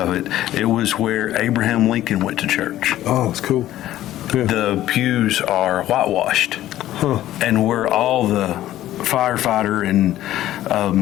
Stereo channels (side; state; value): right; quieter; 13.7 dB